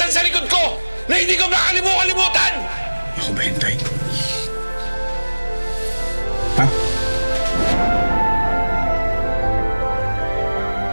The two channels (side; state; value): both; inverted; correlation -1.00